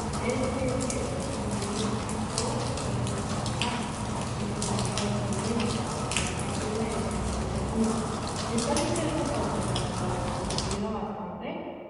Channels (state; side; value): identical; both; correlation 1.00